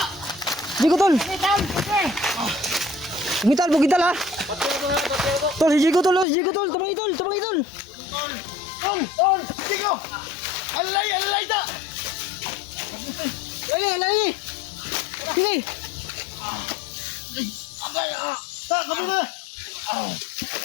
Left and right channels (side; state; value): right; drops out; at 6.2 s